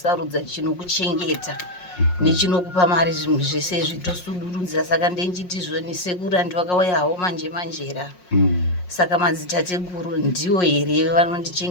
chinokuchengeta nechinokupa mari, zvinhu zvese zvitosudurudza. Saka ndenchitizhoni sekuru andivakauya havo manje manjera. Saka madzitateguru ndiwo here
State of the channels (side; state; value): right; late; 5.5 ms